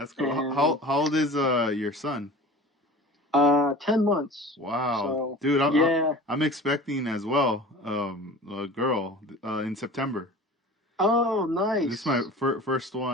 cool. And How old is your son? 10 months. Wow, So dude, yeah. I'm expecting as well a girl in September. Oh, This is my nice. first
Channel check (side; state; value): both; normal; correlation 0.40